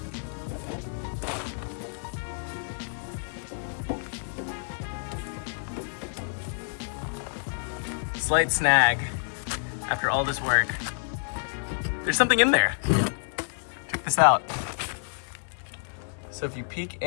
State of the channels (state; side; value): silent; right; digital silence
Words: Slight snag after all this work. There's something in there. Check this out. So if you peek